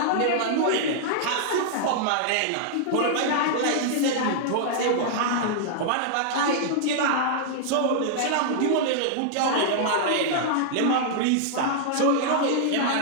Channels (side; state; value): both; different; correlation -0.01